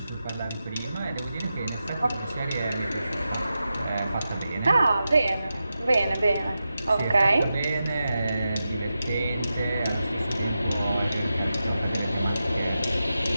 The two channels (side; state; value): both; inverted; correlation -0.90